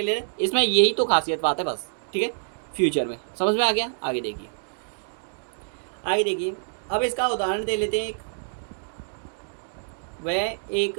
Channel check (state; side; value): silent; left; digital silence